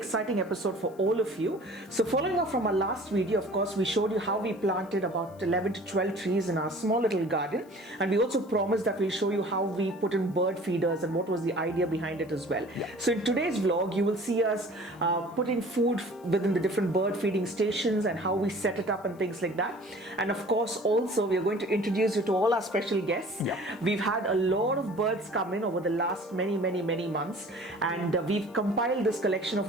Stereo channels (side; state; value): left; noise; hiss, 29 dB below the sound